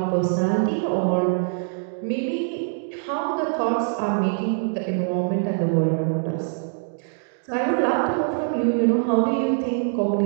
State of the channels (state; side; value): silent; left; digital silence